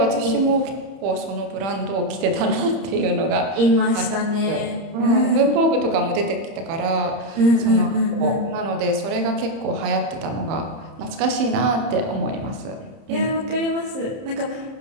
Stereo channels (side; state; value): left; late; 31 ms